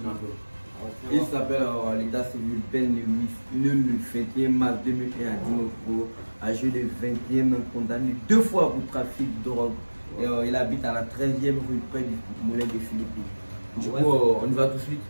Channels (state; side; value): inverted; both; correlation -1.00